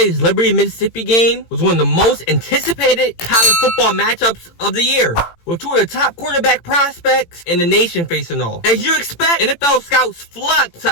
Liberty-Mississippi game was one of the most anticipated college football matchups of the year, with two of the top quarterback prospects in the nation facing off. As you expect, NFL scouts flocked to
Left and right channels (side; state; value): right; late; 18 ms